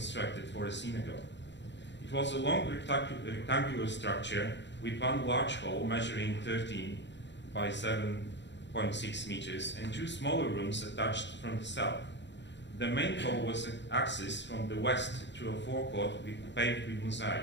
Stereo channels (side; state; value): right; late; 0.52 ms